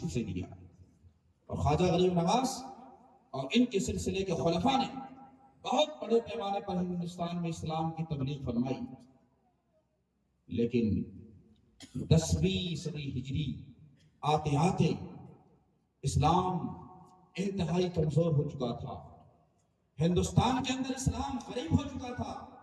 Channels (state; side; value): identical; both; correlation 1.00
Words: سے لیا، اور خواجہ غریب نواز اور ان کے سلسلے کے خلفاء نے بہت بڑے پیمانے پر ہندوستان میں اسلام کی تبلیغ فرمائی۔ لیکن 10ویں صدی ہجری آتے آتے اسلام انتہائی کمزور ہو چکا تھا، ہندوستان کے اندر اسلام غریب ہو چکا تھا۔